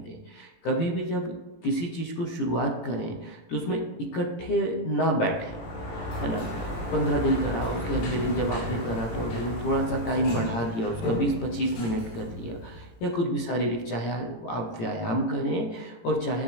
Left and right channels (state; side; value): late; right; 18 ms